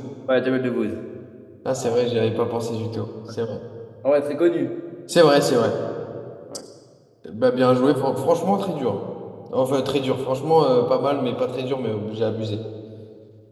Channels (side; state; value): both; identical; correlation 1.00